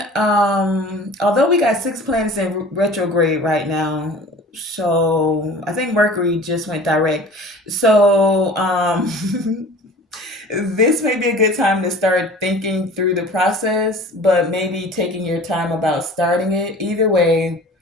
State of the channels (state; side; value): normal; both; correlation 0.43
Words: although we got 6 planets in retrograde right now, so I think Mercury just went direct. So this may be a good time to start thinking through the process, but maybe taking your time about starting it. Either way,